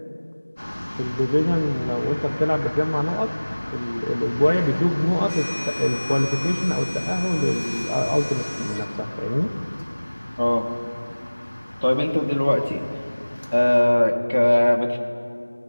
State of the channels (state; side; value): inverted; both; correlation -1.00